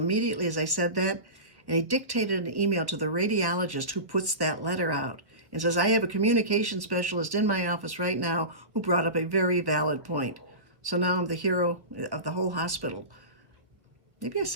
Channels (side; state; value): left; late; 1.4 ms